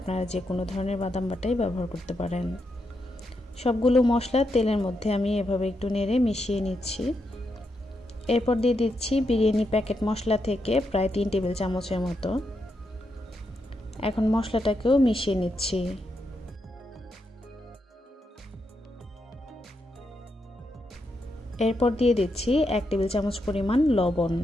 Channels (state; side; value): normal; both; correlation 0.83